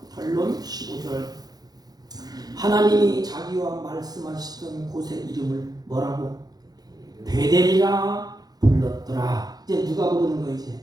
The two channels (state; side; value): late; left; 0.19 ms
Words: 결론 15절. 하나님이 자기와 말씀하시던 곳의 이름을 뭐라고? 베델이라 불렀더라. 이제 누가 부르는 거